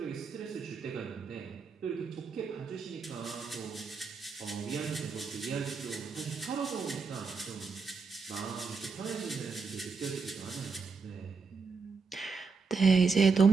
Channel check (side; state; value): left; quieter; 4.9 dB